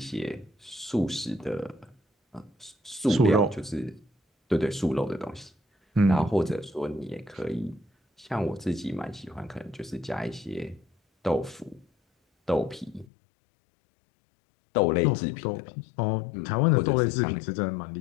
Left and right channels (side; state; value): right; drops out; at 13.1 s